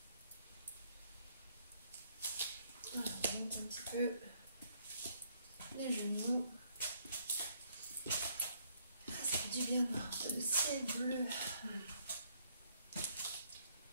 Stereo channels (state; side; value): inverted; both; correlation -0.68